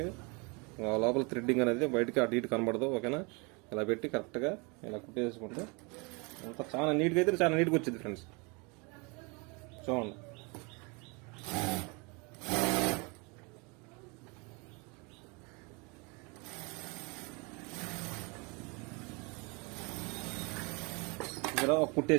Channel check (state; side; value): quieter; left; 30.0 dB